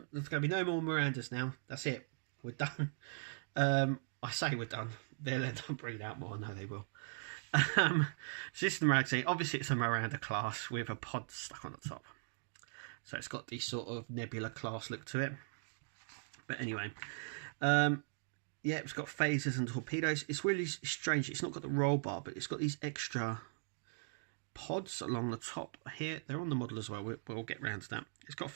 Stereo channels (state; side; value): silent; left; digital silence